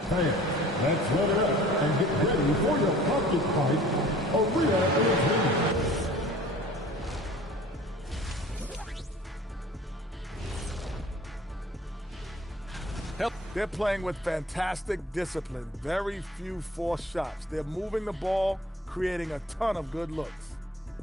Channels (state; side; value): normal; both; correlation 0.47